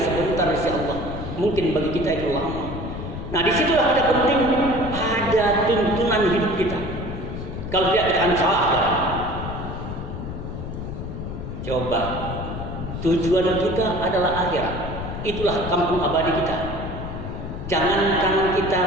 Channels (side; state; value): left; noise; rumble, 7 dB below the sound